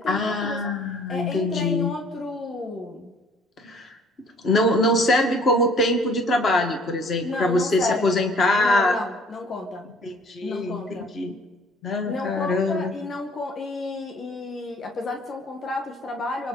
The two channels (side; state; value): both; normal; correlation 0.55